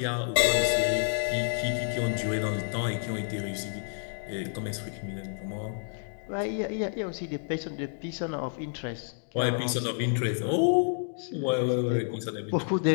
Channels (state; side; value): silent; right; digital silence